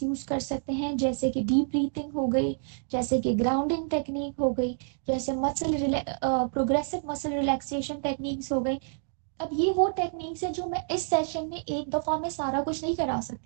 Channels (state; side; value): silent; left; digital silence